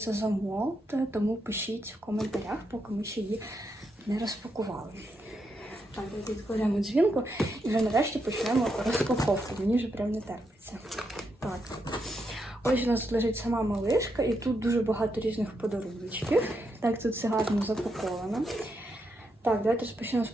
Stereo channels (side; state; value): both; normal; correlation 0.82